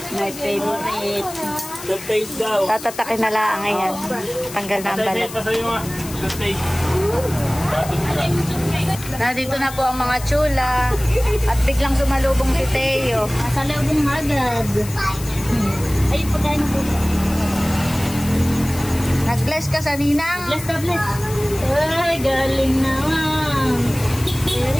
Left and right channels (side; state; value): left; noise; hiss, 13 dB below the sound